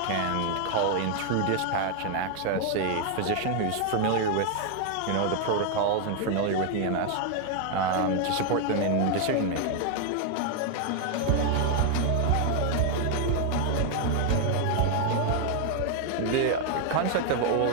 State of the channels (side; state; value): both; different; correlation 0.00